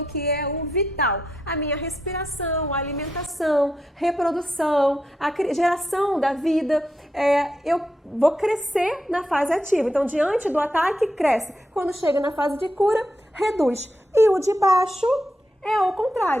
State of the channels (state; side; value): normal; both; correlation 0.83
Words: que é o vital, a minha respiração, a alimentação, reprodução, a geração da vida, eu vou crescer na fase ativa. Então, diante do ataque, cresce. Quando chega na fase de cura, reduz. E o de baixo é o